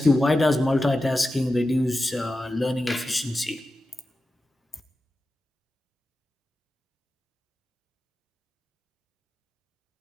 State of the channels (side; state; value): both; normal; correlation 0.92